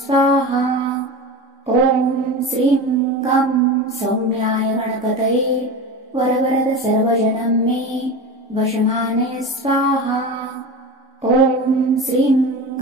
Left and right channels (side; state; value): both; normal; correlation 0.28